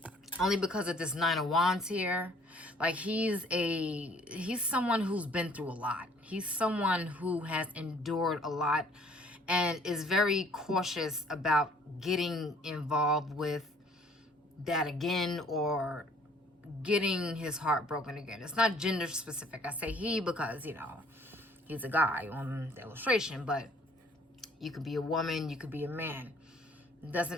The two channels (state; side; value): normal; both; correlation 0.58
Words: only because of this 9 of Wands here. Like, he's someone who's been through a lot. He's someone who has endured a lot and is very cautious about getting involved with that again or getting his heart broken again. It's not gender specific. I say he because, you know, he's a guy on the illustration, but you could be a woman, you could be a man. It